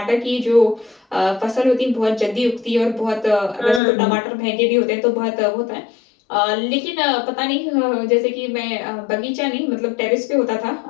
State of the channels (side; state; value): right; drops out; at 3.8 s